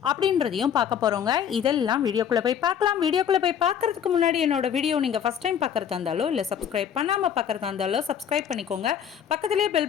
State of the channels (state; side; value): quieter; right; 8.6 dB